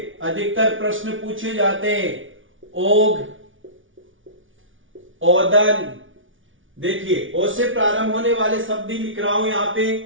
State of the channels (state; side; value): late; left; 0.57 ms